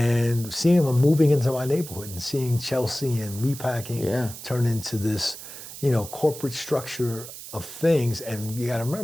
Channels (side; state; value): right; noise; hiss, 13 dB below the sound